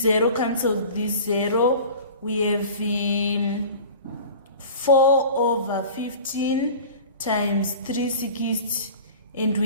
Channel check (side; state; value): both; inverted; correlation -0.40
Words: 0 cancels this 0. We have 4 over 15 times 360, and